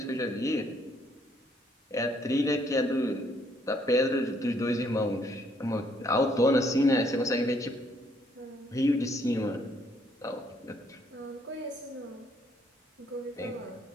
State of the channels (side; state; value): both; normal; correlation 0.68